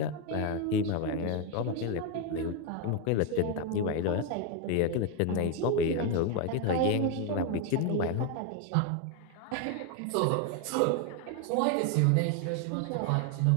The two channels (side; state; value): both; different; correlation 0.01